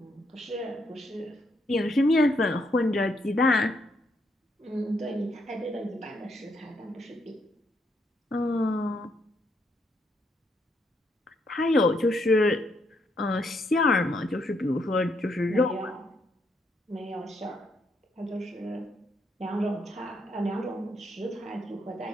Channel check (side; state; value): both; normal; correlation 0.75